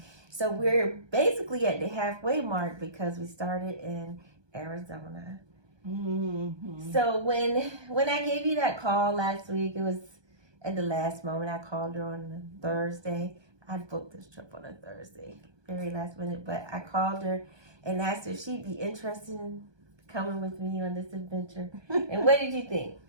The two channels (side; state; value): left; late; 1.2 ms